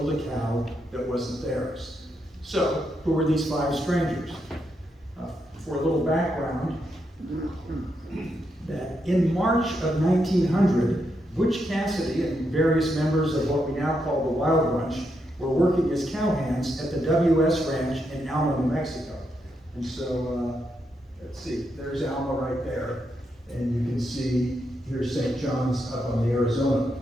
a cow that wasn't theirs. So, who were these 5 strangers? For a little background, that in March of 1900, Butch Cassidy and various members of what we now call the Wild Bunch were working as cowhands at the W.S. Ranch in Alma, New Mexico. And so, let's see, there's Alma right there. And you can see here's St. John's up on the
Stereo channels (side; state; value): both; normal; correlation 0.81